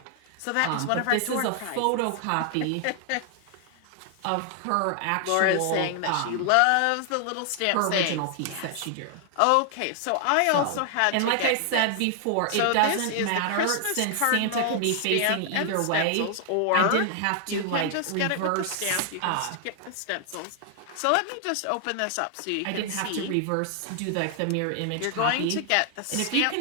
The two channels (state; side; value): different; both; correlation 0.00